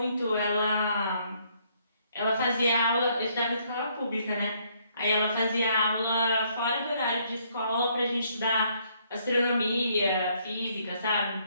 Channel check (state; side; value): inverted; both; correlation -0.68